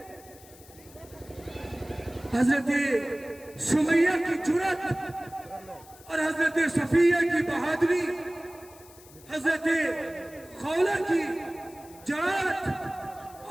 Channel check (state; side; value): noise; left; hiss, 22 dB below the sound